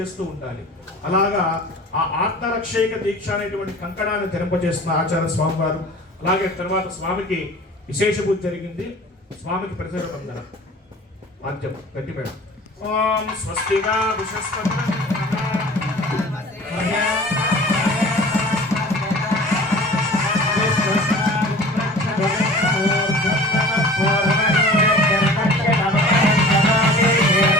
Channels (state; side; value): normal; both; correlation 0.43